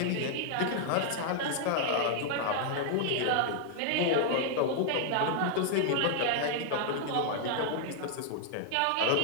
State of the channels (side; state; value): both; different; correlation 0.00